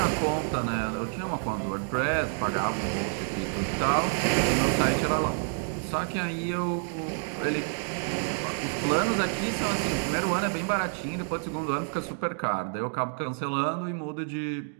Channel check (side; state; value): left; silent; 59 dB below the other